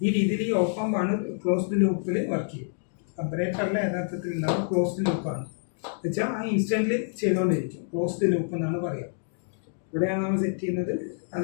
ഈ രീതിയിൽ ഈ ഓപ്പാമ്പാണ് ക്ലോസ്ഡ് ലൂപ്പിൽ വർക്ക് ചെയ്യും. കമ്പാരേറ്റർ അല്ല യഥാർത്ഥത്തിൽ ഉണ്ടാവും, ക്ലോസ്ഡ് ലൂപ്പാണ്. വെച്ചാൽ ആ ഇൻസ്റ്റൻ്റിൽ ചെയ്തുകൊണ്ടിരിക്കും. ക്ലോസ്ഡ് ലൂപ്പ് എന്നാണ് പറയുക. ഇവിടെയാണ് നമ്മൾ സെറ്റ് ചെയ്യുന്നത്,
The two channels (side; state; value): right; silent; digital silence